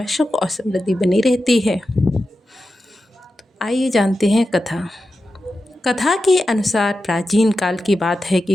सुख और समृद्धि बनी रहती है। आइए जानते हैं कथा। कथा के अनुसार प्राचीन काल की बात है कि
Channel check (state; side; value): normal; both; correlation 0.91